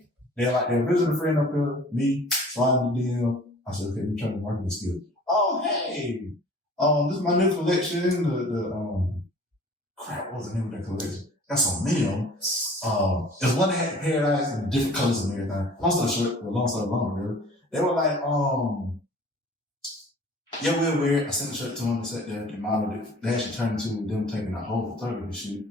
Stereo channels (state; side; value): normal; both; correlation 0.48